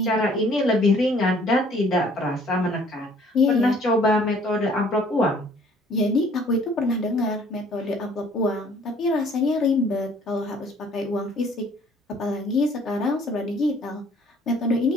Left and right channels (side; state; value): both; normal; correlation 0.58